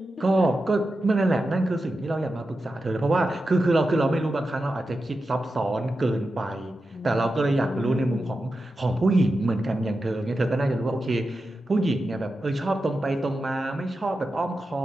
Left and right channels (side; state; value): both; normal; correlation 0.91